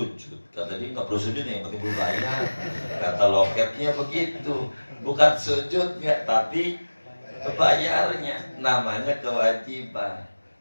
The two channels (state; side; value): inverted; both; correlation -1.00